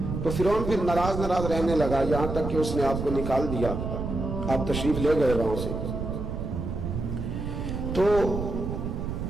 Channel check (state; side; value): noise; right; rumble, 4 dB below the sound